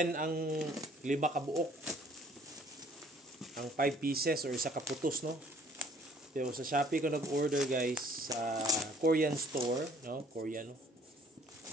ang 5 kabuok, ang 5 pieces or isa kaputos, no? Pero sa Shopee ko nag-order, guys, sa Korean store, no? Korean, no?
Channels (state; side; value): normal; both; correlation 0.58